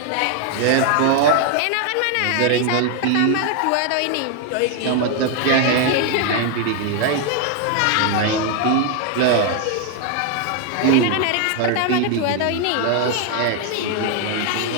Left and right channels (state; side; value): different; both; correlation 0.00